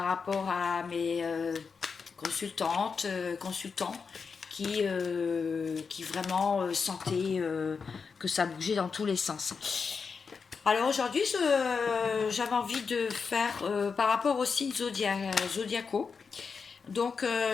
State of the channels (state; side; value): quieter; right; 5.4 dB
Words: rapport à mes consultantes, consultants qui vraiment sentaient que ça bougeait dans tous les sens. Alors aujourd'hui, j'avais envie de faire par rapport aux signes zodiacaux. Donc